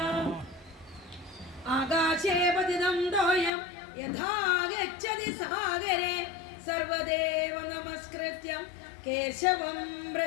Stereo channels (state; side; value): drops out; right; at 3.5 s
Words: ആകാശേ പതിതം തോയം യഥാ ഗച്ഛതി സാഗരേ സർവദേവ നമസ്കൃത്യം കേശവം